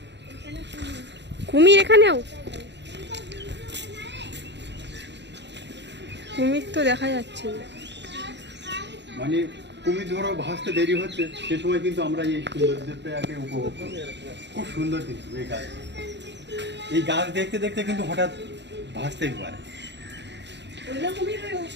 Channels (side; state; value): left; late; 0.51 ms